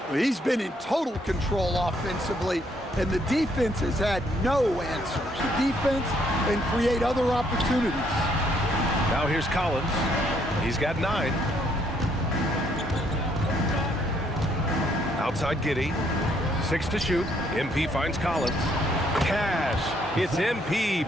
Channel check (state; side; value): normal; both; correlation 0.69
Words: He's been in total control offensively, and the defense has had no answers. The defense and create other opportunities. Now here's Collins. He's got 9. Outside Giddy. 6 to shoot. MP finds Collins. Cash. It's MP